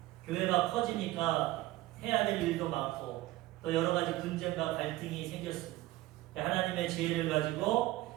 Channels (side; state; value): left; quieter; 17.5 dB